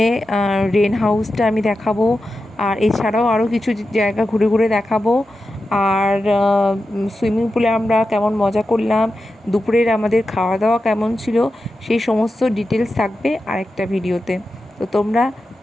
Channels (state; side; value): normal; both; correlation 0.91